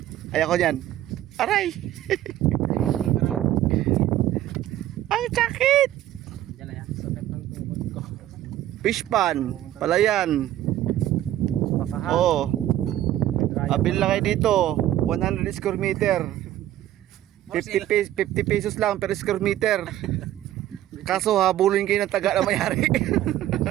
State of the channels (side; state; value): left; quieter; 13.2 dB